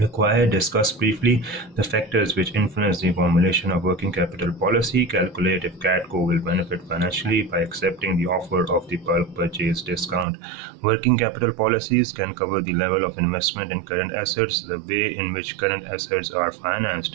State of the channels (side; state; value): left; drops out; at 10.2 s